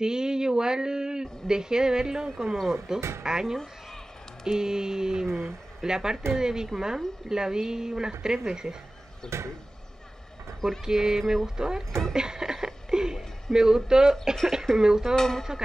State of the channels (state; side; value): normal; both; correlation 0.97